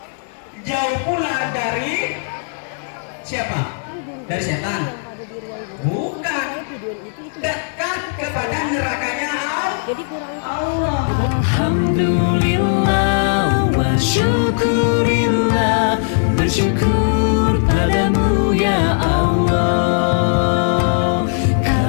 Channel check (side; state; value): right; silent; digital silence